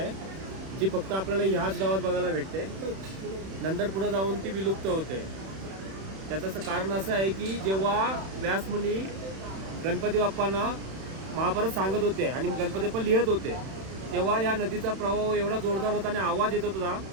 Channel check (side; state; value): left; late; 31 ms